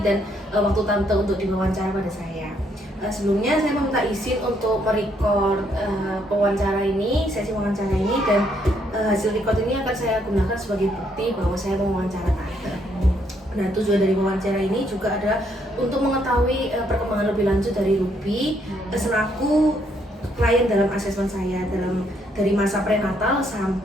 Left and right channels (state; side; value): normal; both; correlation 0.72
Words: dan waktu Tante untuk diwawancara pada saya. Sebelumnya saya meminta izin untuk merecord wawancara ini, sesi wawancara ini, dan hasil record ini akan saya gunakan sebagai bukti bahwa saya mewawancara Tante. Nah tujuan dari wawancara ini juga adalah untuk mengetahui perkembangan lebih lanjut dari Ruby selaku klien dalam asesmen saya dari masa prenatal